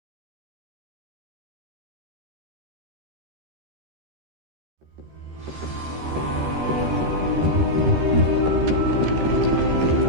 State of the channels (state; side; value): late; left; 13 ms